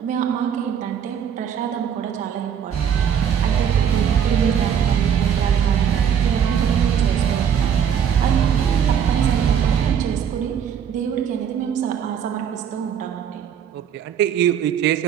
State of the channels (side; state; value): left; quieter; 8.3 dB